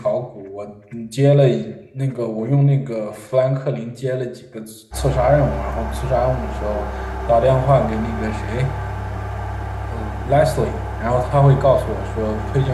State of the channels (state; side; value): identical; both; correlation 1.00